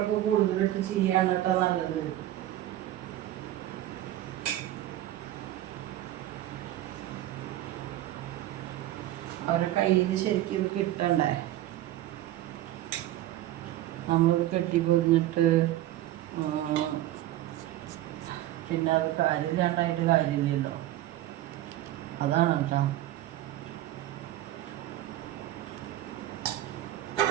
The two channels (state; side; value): quieter; left; 14.3 dB